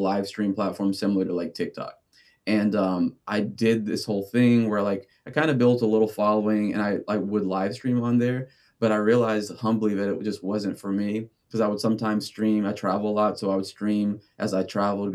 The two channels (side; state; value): both; identical; correlation 1.00